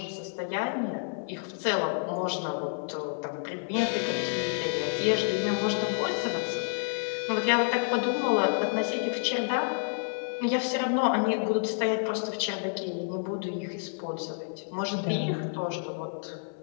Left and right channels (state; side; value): silent; right; digital silence